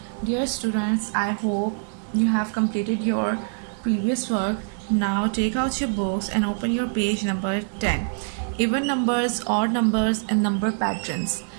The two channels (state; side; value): silent; left; digital silence